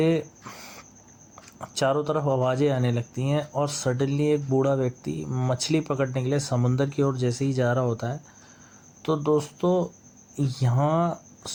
चारों तरफ आवाज़ें आने लगती हैं और सडनली एक बूढ़ा व्यक्ति मछली पकड़ने के लिए समुंदर की ओर जैसे ही जा रहा होता है, तो दोस्तों यहाँ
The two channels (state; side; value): identical; both; correlation 1.00